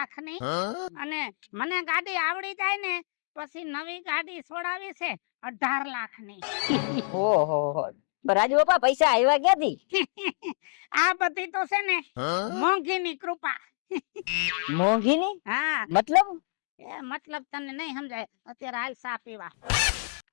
અને મને ગાડી આવડી જાય ને પછી નવી ગાડી છોડાવી છે 18 લાખની ઓહો રાજુ બાપા પૈસા આવ્યા ક્યાંથી? આ બધી તો છે ને મોંઘીની કૃપા મોંઘીની હા મતલબ? એ મતલબ તને નહીં સમજાય અત્યારે હાલ ચા પીવા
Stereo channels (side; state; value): right; silent; digital silence